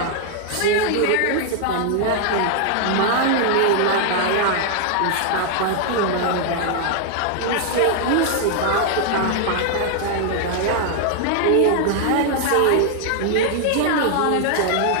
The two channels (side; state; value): both; different; correlation 0.00